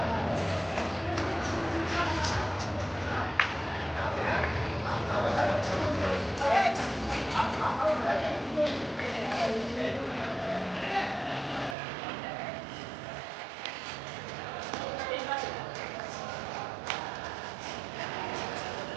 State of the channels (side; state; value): left; drops out; at 11.8 s